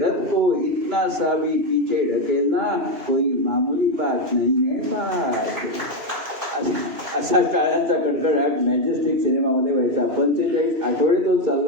रथ को इतना सा भी पीछे ढकेलना कोई मामूली बात नहीं है बात. असा टाळ्यांचा कडकडाट मॅजेस्टिक सिनेमामध्ये व्हायचा. 45 आठवडे तो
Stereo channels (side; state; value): left; late; 2.7 ms